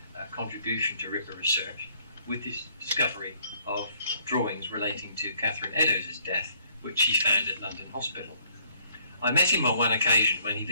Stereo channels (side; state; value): both; inverted; correlation -0.64